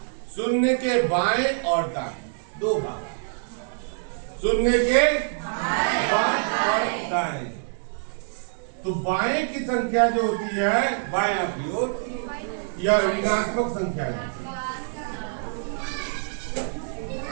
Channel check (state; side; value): silent; left; 61 dB below the other